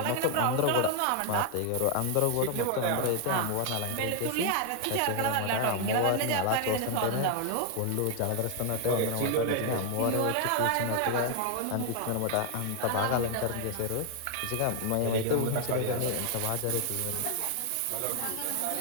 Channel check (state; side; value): different; both; correlation 0.00